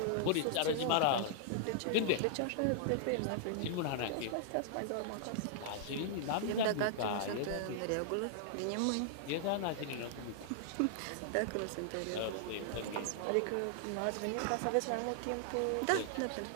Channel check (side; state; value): both; different; correlation -0.01